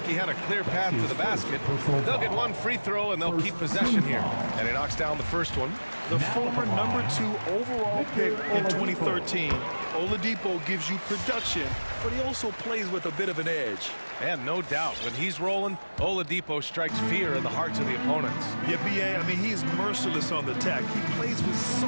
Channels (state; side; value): inverted; both; correlation -1.00